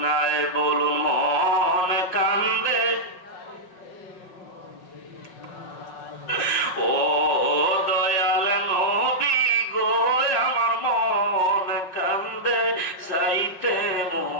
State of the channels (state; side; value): late; right; 5.5 ms